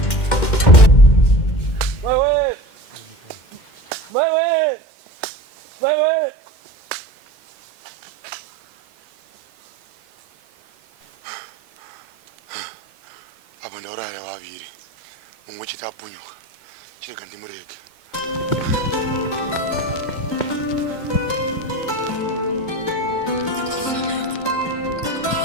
apa ndauraya vaviri mumwe chete apunyuka chirega ndimurege.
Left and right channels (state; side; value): late; right; 2.1 ms